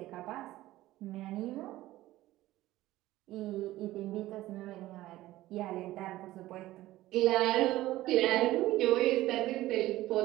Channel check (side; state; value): left; quieter; 16.1 dB